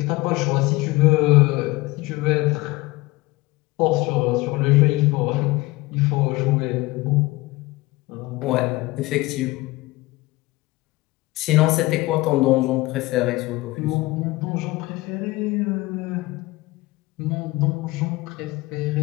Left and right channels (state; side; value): quieter; right; 20.7 dB